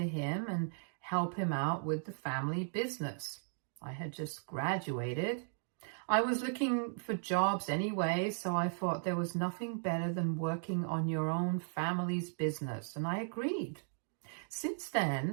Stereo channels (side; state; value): left; silent; digital silence